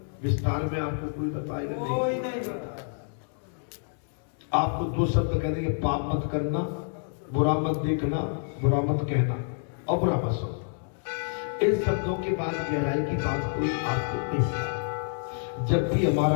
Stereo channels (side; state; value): right; silent; 59 dB below the other